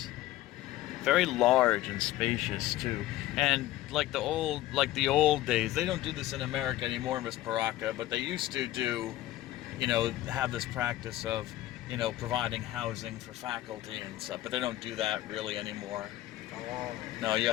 Very large and spacious too. And like the old days, they don't do this in America anymore, Miss Paraka, but they used to do, have this practice of, providing housing for faculty and stuff, but they don't do that really anymore. Oh. No, you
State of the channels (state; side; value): quieter; right; 15.2 dB